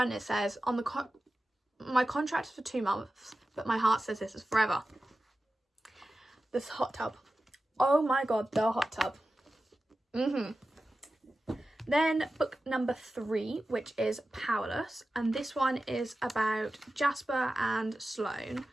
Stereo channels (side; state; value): both; normal; correlation 0.94